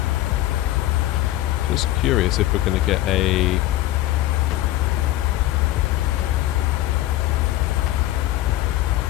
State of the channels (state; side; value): quieter; right; 15.1 dB